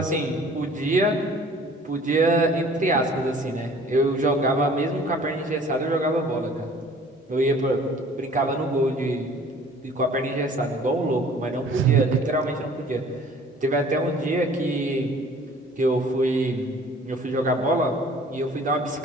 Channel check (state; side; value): normal; both; correlation 0.51